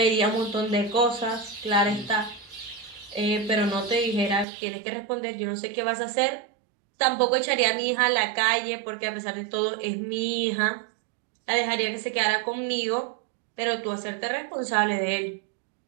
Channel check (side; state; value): left; drops out; at 4.5 s